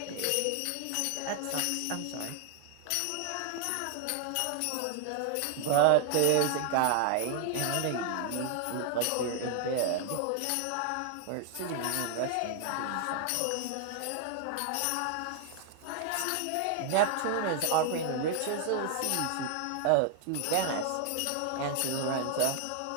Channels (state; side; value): different; both; correlation 0.00